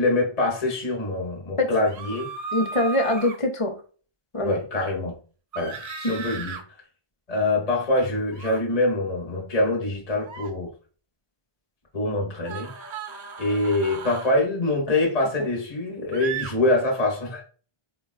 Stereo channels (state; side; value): late; right; 1.2 ms